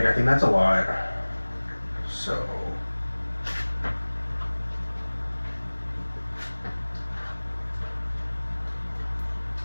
I think that's a lot. So.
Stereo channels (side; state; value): both; inverted; correlation -1.00